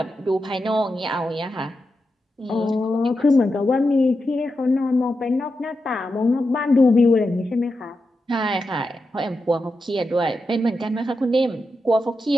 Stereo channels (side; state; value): both; normal; correlation 0.88